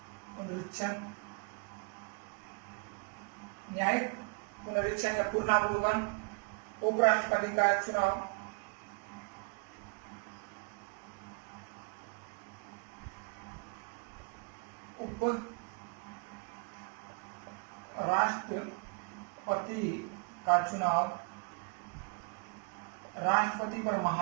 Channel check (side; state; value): left; quieter; 35.0 dB